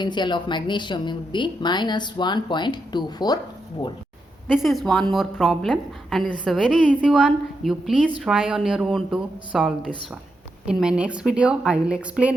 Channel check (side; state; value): both; normal; correlation 0.84